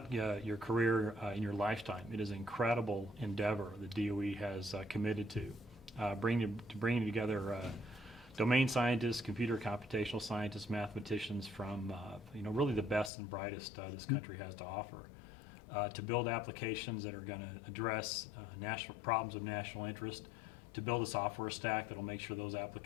your career in your lifetime, it is an incredible endeavor that DOE has committed to, bringing together domain scientists, computer computational scientists, mathematicians from really the best and brightest this country has to offer. To build applications that are going to address national problems of national interest, to build a software stack that will make sure those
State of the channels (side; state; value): right; drops out; at 13.1 s